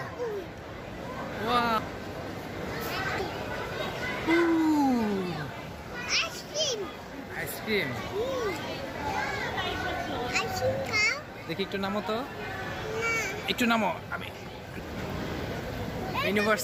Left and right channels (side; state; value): both; identical; correlation 1.00